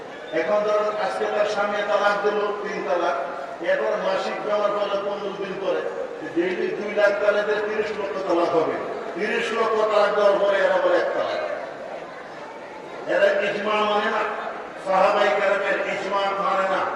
এখন ধরুন আজকে তার স্বামী তালাক দিল 3 তালাক, এরপর মাসিক ব্যবহার করলে 15 দিন পরে ডেইলি 2 লাখ তালাকের 30 লক্ষ তালাক হবে। 30 লক্ষ তালাক দেওয়ার পরে এরা বলে 1 তালাক। এরা ইজমা মানে না, সাহাবায়ে কেরামের ইজমা মানে না।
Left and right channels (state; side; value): identical; both; correlation 1.00